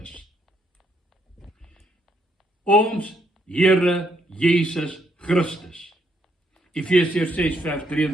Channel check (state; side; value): normal; both; correlation 0.74